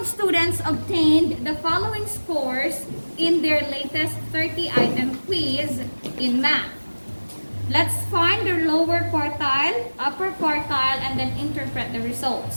students obtained the following scores in their latest 30-item quiz in math. Let's find their lower quartile, upper quartile, and then interpret the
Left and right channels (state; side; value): inverted; both; correlation -1.00